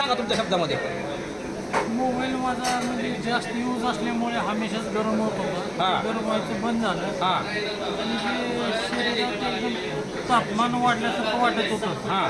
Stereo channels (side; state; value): both; identical; correlation 1.00